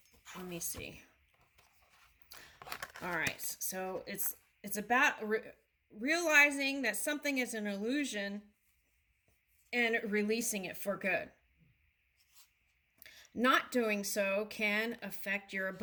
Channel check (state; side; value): identical; both; correlation 1.00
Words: let me see. All right, so it's about realizing that something is an illusion and releasing it for good. Not doing so can affect your